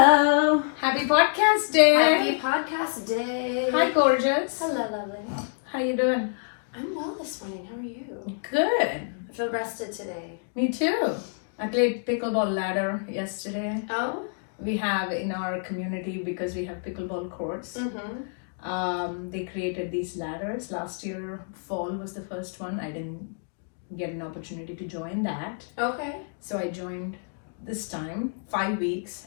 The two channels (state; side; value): silent; right; digital silence